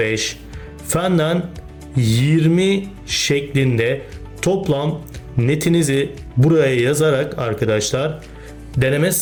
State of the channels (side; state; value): both; identical; correlation 1.00